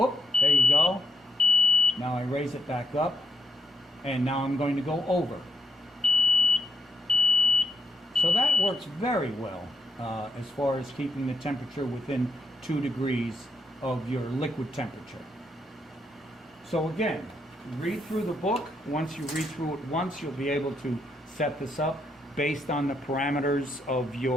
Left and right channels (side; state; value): both; normal; correlation 0.79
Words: there you go. Now I raise it back up, and now I'm going to go over. So that works very well as far as keeping the temperature within 2 degrees of your liquid temperature. So again, read through the book. Once you read through it once, you'll be able to set this up based on the parameters of